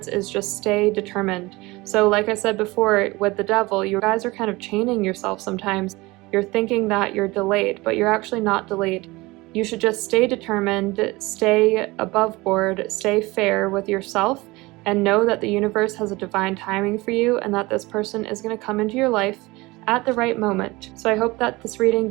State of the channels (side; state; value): left; quieter; 22.0 dB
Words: is just stay determined. So like I said before, with the Devil, you guys are kind of chaining yourself sometimes. You're thinking that you're delayed, but you're actually not delayed. You should just stay determined, stay above board, stay fair with yourself, and know that the universe has a divine timing for you and that this person is going to come into your life at the right moment. So I hope that this reading